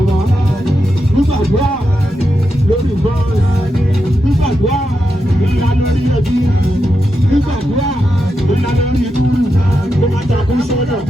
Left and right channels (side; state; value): both; normal; correlation 0.86